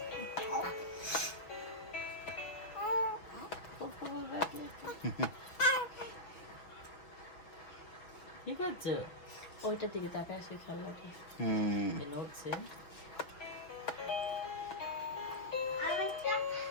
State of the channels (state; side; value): late; right; 6.1 ms